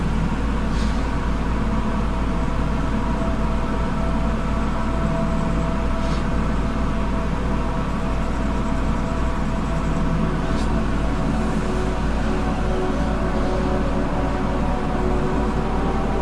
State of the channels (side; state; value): both; identical; correlation 1.00